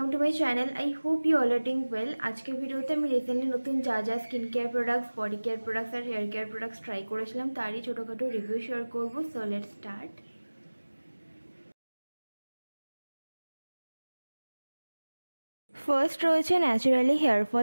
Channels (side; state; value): both; inverted; correlation -1.00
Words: to my channel. I hope you all are doing well. আজকে ভিডিওতে আমি recently নতুন যা skin care products, body care products আর hair care products try করেছিলাম তারই ছোটোখাটো রিভিউ শেয়ার করবো। So let's start. ফার্স্ট রয়েছে Naturali hair